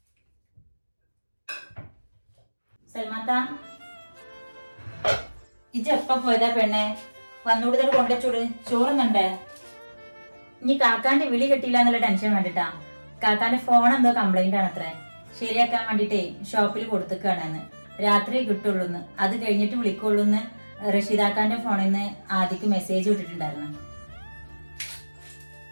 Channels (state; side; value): inverted; both; correlation -1.00